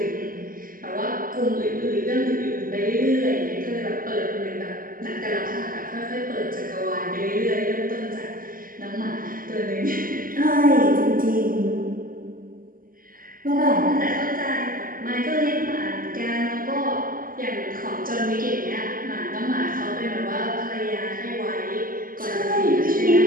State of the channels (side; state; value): left; late; 0.41 ms